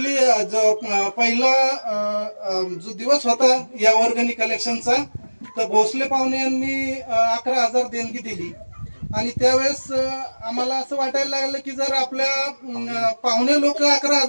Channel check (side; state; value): both; inverted; correlation -1.00